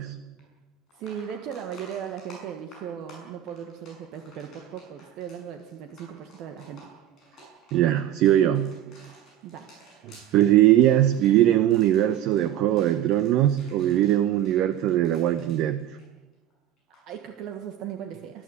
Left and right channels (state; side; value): quieter; left; 12.0 dB